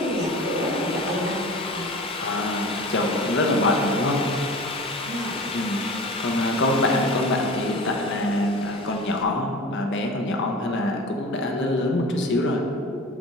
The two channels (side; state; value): both; normal; correlation 0.36